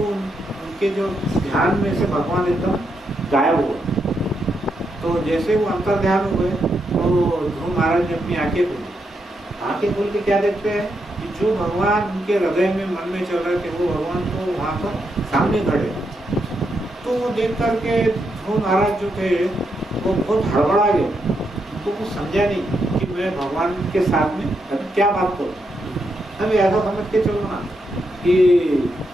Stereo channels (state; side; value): normal; both; correlation 0.81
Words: जो ध्यान में से भगवान एकदम गायब हुआ। तो जैसे वो अंतर ध्यान हुए तो ध्रुव महाराज ने अपनी आंखें खोली। आंखें खोल के क्या देखते हैं कि जो भगवान उनके हृदय में मन में चल रहे थे वो भगवान तो वहाँ पर सामने खड़े। तो वो देख करके ध्रुव महाराज जो थे वो बहुत हड़बड़ा गए, उनको कुछ समझा नहीं कि मैं भगवान के साथ में अभी क्या बात करूँ। अभी ऐसा समझ के चलो ना कि